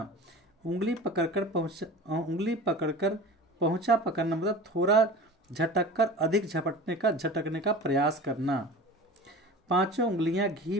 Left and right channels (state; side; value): normal; both; correlation 0.36